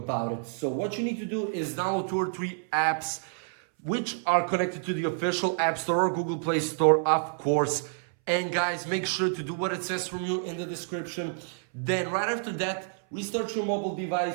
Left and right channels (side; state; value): left; silent; 59 dB below the other